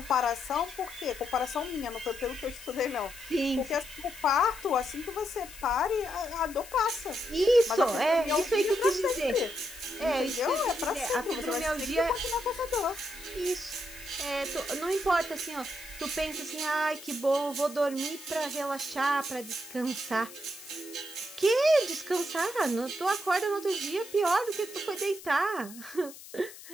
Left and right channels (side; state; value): left; noise; hiss, 16 dB below the sound